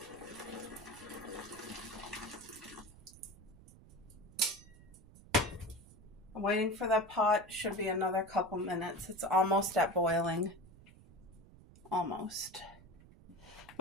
I'm waiting for that pot. Should be another couple minutes. It's almost at boiling. Almost.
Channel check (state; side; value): noise; right; rumble, 21 dB below the sound